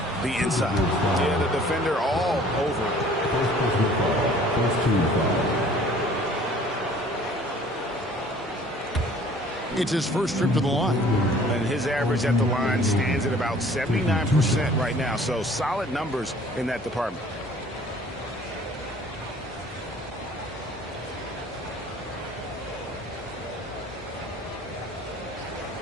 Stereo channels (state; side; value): normal; both; correlation 0.52